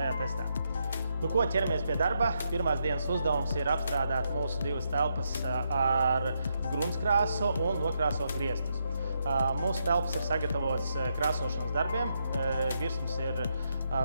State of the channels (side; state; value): both; inverted; correlation -0.80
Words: testā. Ko ķeramies pie darba? Pirmās dienas uzdevums ir apstrādāt mūsu divas telpas ar gruntskrāsu un nokrāsot griestus. Mūsu telpas ir sagatavotas krāsošanas darbiem. Virsmas ir